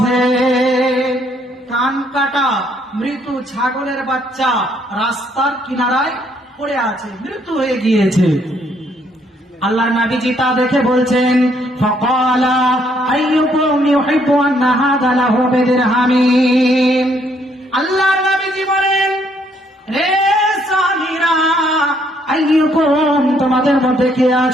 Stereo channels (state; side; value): normal; both; correlation 0.69